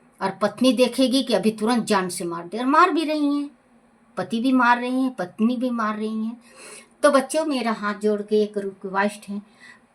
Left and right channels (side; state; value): both; identical; correlation 1.00